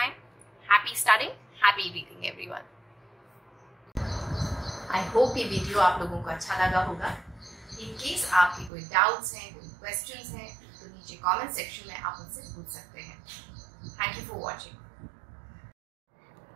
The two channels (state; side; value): drops out; left; at 8.7 s